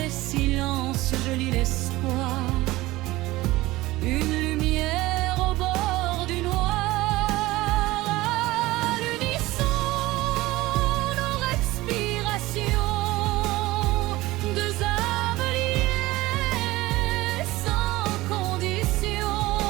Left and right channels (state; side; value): quieter; left; 18.8 dB